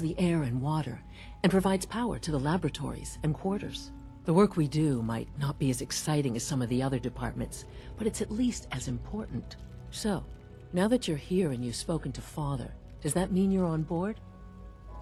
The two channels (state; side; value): identical; both; correlation 1.00